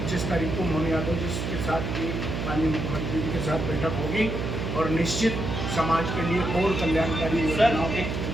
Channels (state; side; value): noise; right; hum, 3 dB below the sound